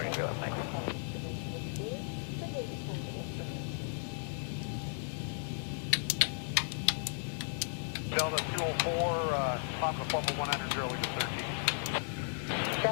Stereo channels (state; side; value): silent; right; 54 dB below the other